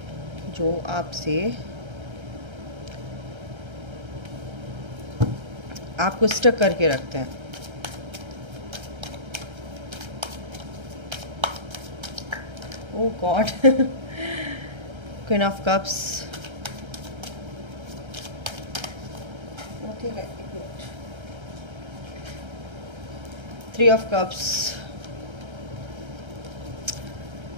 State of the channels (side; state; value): left; late; 1.3 ms